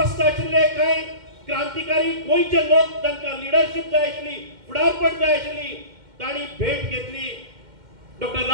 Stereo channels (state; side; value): late; left; 2.1 ms